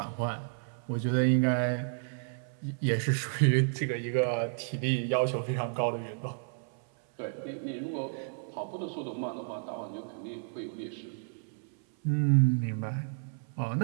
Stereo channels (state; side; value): silent; left; 57 dB below the other